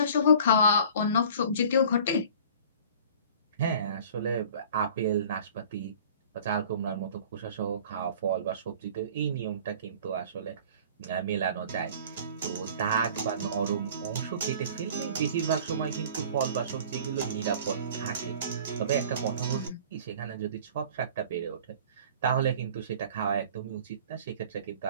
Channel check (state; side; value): inverted; both; correlation -0.46